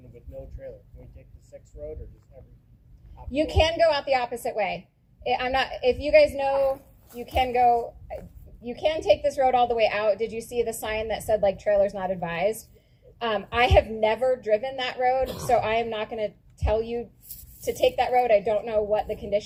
with no trailer, can we take the 6th road or just every? You can go out the opposite way. If you guys know, you can go, you can take this road all the way out. Did you see the sign that said, like, trailers not advised? I have never driven that road, so I am not going to tell you to take that road. I don't know what the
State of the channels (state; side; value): identical; both; correlation 1.00